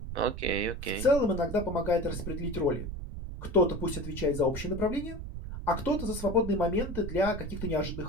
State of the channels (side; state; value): right; noise; rumble, 7 dB below the sound